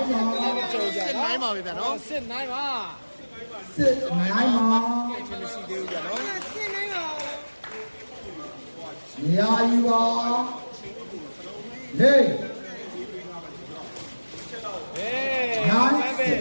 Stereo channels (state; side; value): inverted; both; correlation -1.00